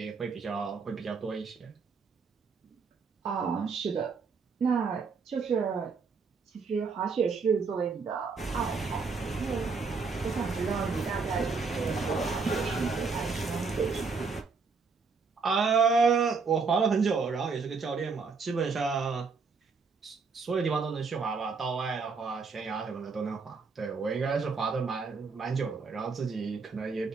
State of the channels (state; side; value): quieter; left; 4.9 dB